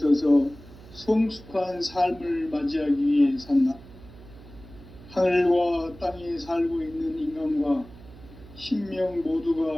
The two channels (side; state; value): right; noise; hum, 20 dB below the sound